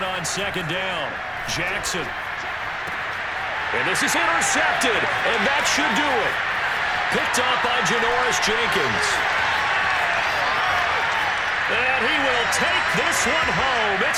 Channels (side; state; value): both; identical; correlation 1.00